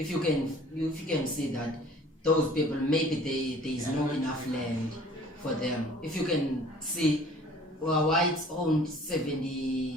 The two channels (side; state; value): both; normal; correlation 0.50